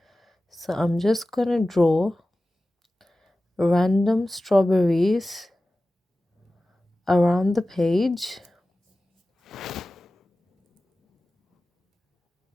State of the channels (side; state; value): both; normal; correlation 0.96